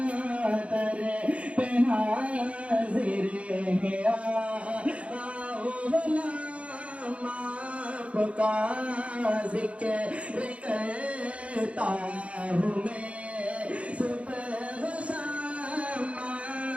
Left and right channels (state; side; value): late; left; 0.062 ms